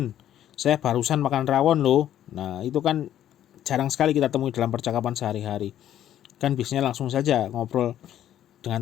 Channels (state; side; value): quieter; right; 11.4 dB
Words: Saya barusan makan rawon loh. Nah, itu kan jarang sekali kita temui dalam percakapan sehari-hari. Kan biasanya langsung saja ngobrol